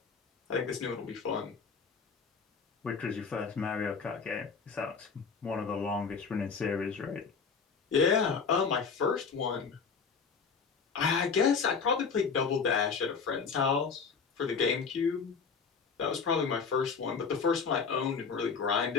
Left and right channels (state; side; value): quieter; right; 5.5 dB